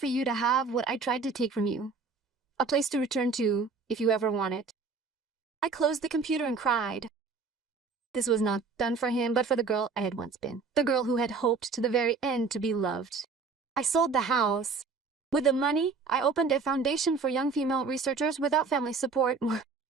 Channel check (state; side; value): quieter; left; 4.6 dB